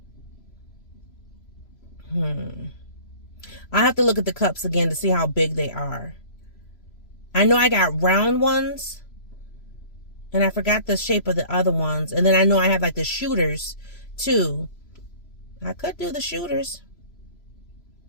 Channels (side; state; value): right; late; 3.0 ms